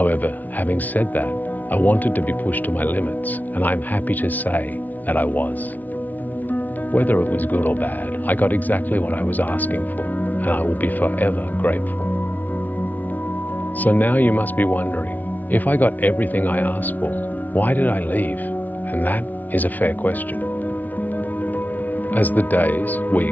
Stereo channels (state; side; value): late; right; 0.079 ms